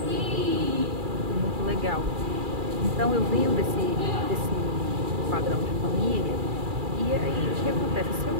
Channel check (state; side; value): late; left; 2.4 ms